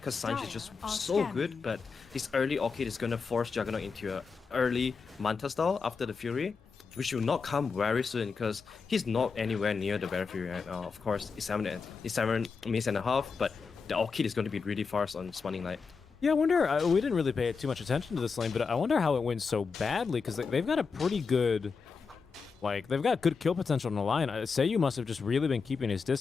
Sanji is just so good. But this early Orchid is going to force Juggernaut into a early Manta style after the Fury, which will not come very soon because he's not anywhere near the Bare Fury right now. Of course, it's 7 minutes and a half, but the Orchid is going to be really fast on Smiling Light. Yeah, I wonder, we didn't really pay too much attention to this lane, but I wonder how it went so badly because they've got a pretty good... Like, they've got good kill potential on the line. Seiyu must have just really been keeping his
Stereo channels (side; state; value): right; quieter; 5.1 dB